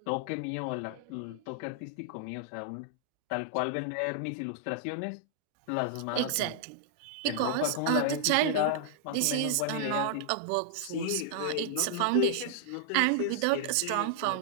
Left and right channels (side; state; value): both; different; correlation -0.01